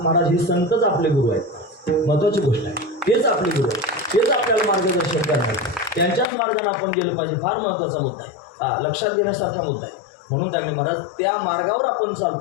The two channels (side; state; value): right; drops out; at 6.2 s